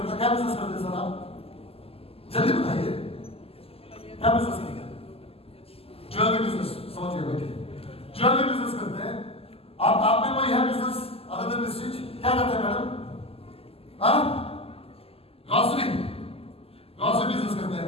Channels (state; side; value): late; right; 0.28 ms